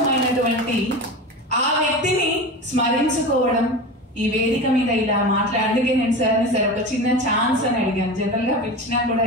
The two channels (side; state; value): both; normal; correlation 0.28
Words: ఆ వ్యక్తిని స్మరించుకోవడం, ఈ వేదిక మీద ఇలా అందుకే నేను సార్ ఒక చిన్న ఛాన్స్ అని అడిగాను. జనరల్ గా పిలిచినా కూడా